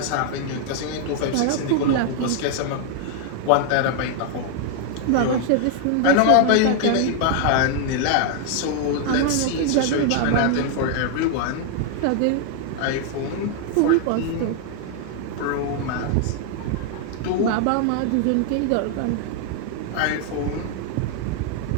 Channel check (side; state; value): both; different; correlation 0.00